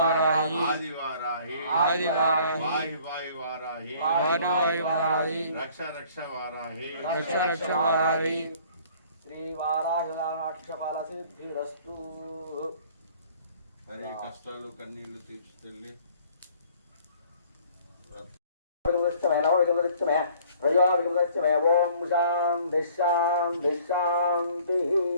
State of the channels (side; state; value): both; inverted; correlation -0.55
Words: ఆది వారాహి ఆది వారాహి వాయు వాయు వారాహి వారు వాయు వారాహి రక్ష రక్ష వారాహి రక్ష రక్ష వారాహి శ్రీ వారాహినాక్షపాల సిద్ధిరస్తు. మరి కష్టాలు కన్నీళ్లు తీర్చుతెల్లి ఓం శాంతి శాంతి శాంతి.